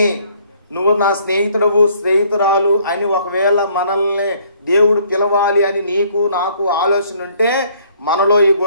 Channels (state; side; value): inverted; both; correlation -0.62